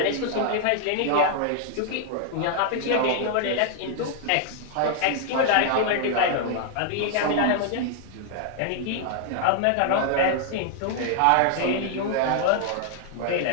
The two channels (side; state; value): both; different; correlation 0.00